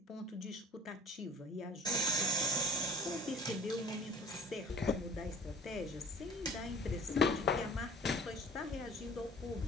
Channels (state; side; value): normal; both; correlation 0.48